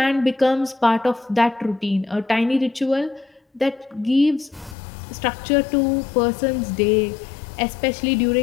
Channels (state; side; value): drops out; right; at 4.8 s